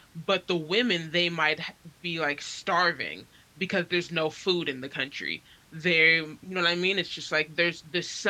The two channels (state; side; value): identical; both; correlation 1.00